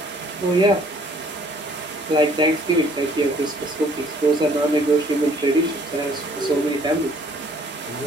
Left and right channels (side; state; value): both; normal; correlation 0.60